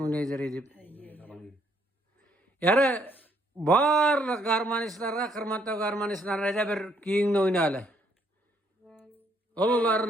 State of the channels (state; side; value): normal; both; correlation 0.68